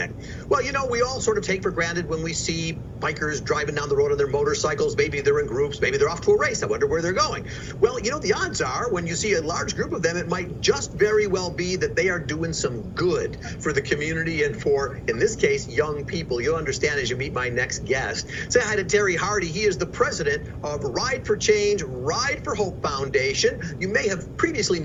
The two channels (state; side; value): identical; both; correlation 1.00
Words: Well, we all sort of take for granted when we see bikers driving down the road on their motorcycles. Maybe they're in groups. Maybe they're off to a race. I wonder where they're going. Well, the odds are when you see a large group of them, it might just very well be that they are doing some good for the community and for, in this case, young people. You'll understand as you meet my next guest. Say hi to Terry Hardy. He is the president of Ride for Change, Ride for Hope Foundation. You may have previously